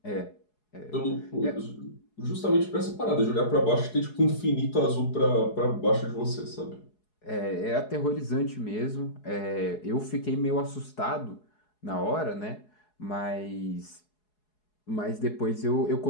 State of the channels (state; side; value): late; right; 4.7 ms